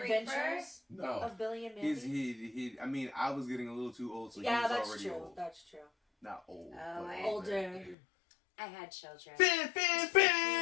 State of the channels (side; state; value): right; drops out; at 8.0 s